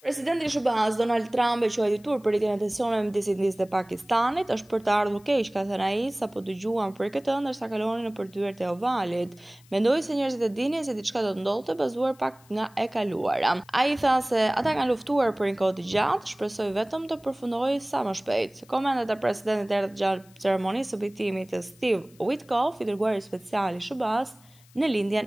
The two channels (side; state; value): left; noise; hiss, 28 dB below the sound